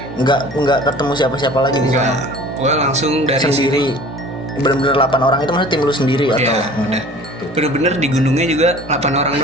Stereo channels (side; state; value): both; normal; correlation 0.45